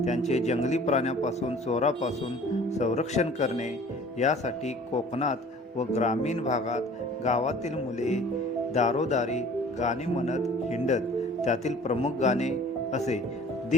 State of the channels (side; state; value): both; normal; correlation 0.48